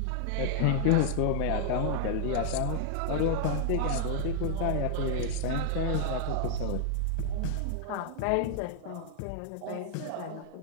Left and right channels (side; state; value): both; different; correlation 0.00